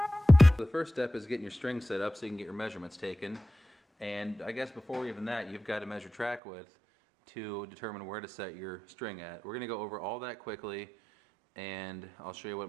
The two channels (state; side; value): drops out; left; at 6.4 s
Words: The first step is getting your string set up so you can get your measurements taken. And I guess before even that, you've got to measure track width to determine where to set your string at. We're going to go over all that quickly, and I'll show you what